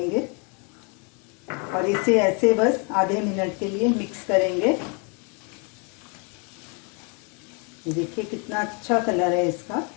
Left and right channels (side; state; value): right; quieter; 34.9 dB